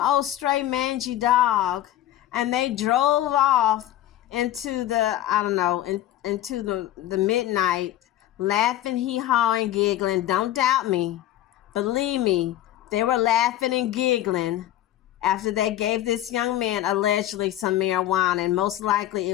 old stray mangy dog. And they drove off into the, I don't know, into the midnight, laughing, hee-hawing, giggling. Don't doubt me. Believe me, they were laughing and giggling after they gave this young man allegedly some marijuana, and most likely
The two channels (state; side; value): quieter; right; 13.4 dB